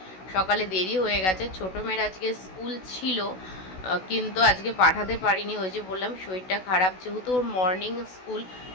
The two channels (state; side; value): late; right; 16 ms